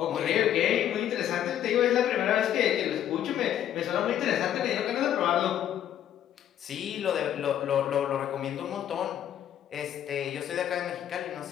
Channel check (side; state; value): right; quieter; 10.7 dB